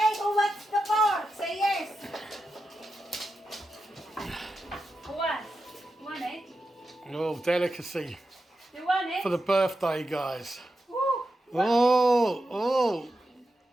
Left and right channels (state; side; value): normal; both; correlation 0.89